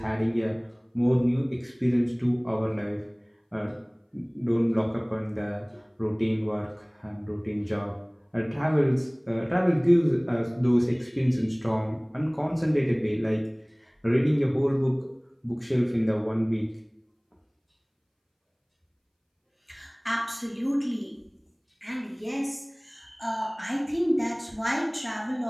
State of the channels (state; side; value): identical; both; correlation 1.00